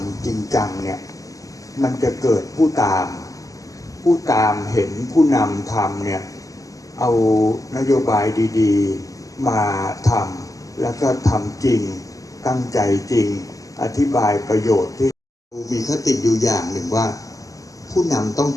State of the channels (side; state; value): right; late; 0.17 ms